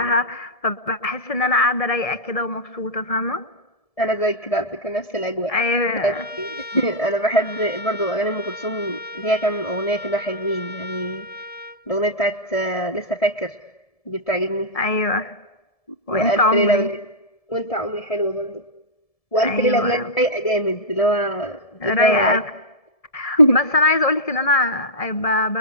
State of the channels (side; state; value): right; late; 1.7 ms